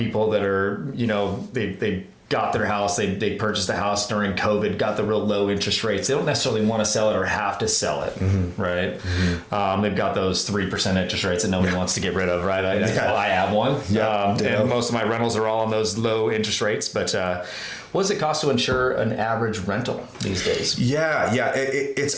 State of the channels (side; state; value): both; identical; correlation 1.00